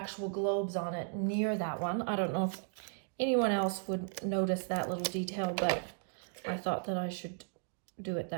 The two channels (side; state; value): left; silent; 54 dB below the other